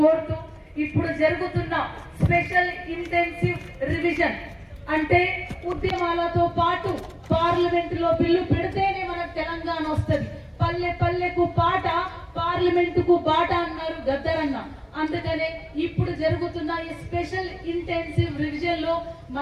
ఇప్పుడు జరుగుతున్న స్పెషల్ ఇంటెన్సివ్ రివిజన్ అంటే ఉద్యమాలతో పాటు పార్లమెంటులో బిల్లు పెడితేనే మనకు తెలంగాణ వస్తుంది. పల్లె పల్లెకు పాట, పార్లమెంటుకు బాట అన్నారు గద్దరన్న. అందుకనే ఇప్పుడు జరుగుతున్న ఈ స్పెషల్ ఇంటెన్సివ్ రివిజన్ లో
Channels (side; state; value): both; identical; correlation 1.00